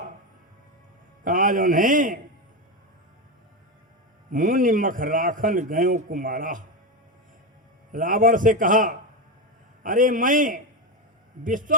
जो है मुनि मख राखन गयो कुमारा। रावण से कहा, अरे मैं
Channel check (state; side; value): normal; both; correlation 0.13